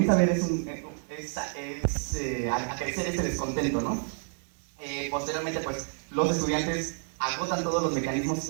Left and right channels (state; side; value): silent; left; 57 dB below the other